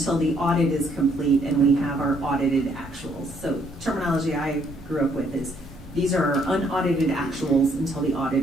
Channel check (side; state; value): both; normal; correlation 0.68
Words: the audit is complete and we have our audited actuals. So terminology I grew up with is these are our unaudited actuals until the